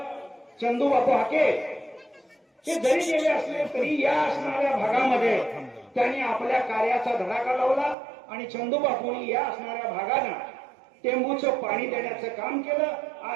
चंदूबापू हाके हे जरी गेले असले तरी या असणाऱ्या भागामध्ये त्यांनी आपल्या कार्याचा धडाका लावला. आणि चंदूबापूंनी या असणाऱ्या भागांना टेंबूचं पाणी देण्याचं काम केलं.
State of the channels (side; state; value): left; drops out; at 8.0 s